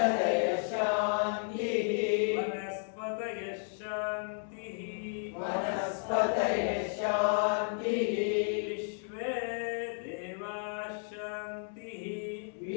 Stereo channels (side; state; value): right; silent; 56 dB below the other